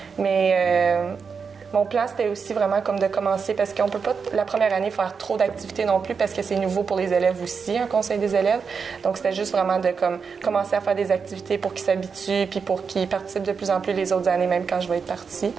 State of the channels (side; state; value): left; quieter; 5.7 dB